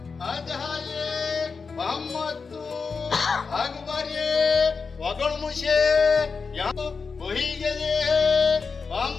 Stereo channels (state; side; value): quieter; right; 5.0 dB